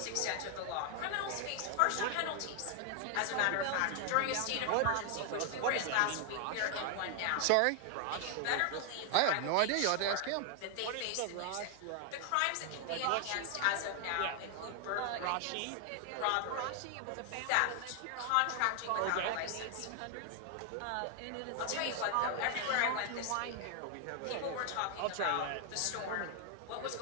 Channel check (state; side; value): different; both; correlation 0.00